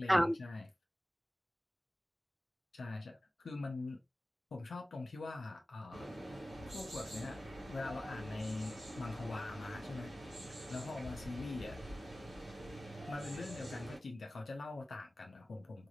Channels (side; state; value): both; normal; correlation 0.97